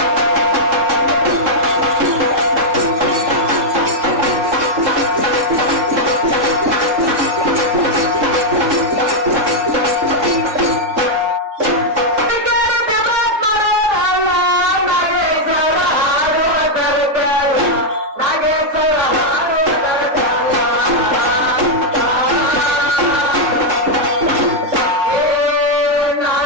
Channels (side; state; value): left; late; 3.8 ms